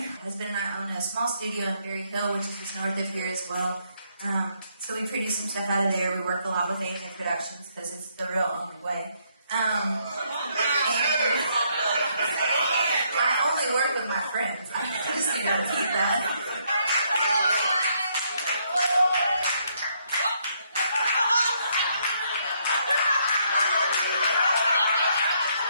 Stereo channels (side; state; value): both; inverted; correlation -0.72